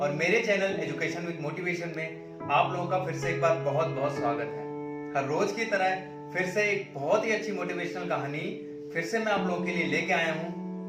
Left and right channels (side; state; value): both; identical; correlation 1.00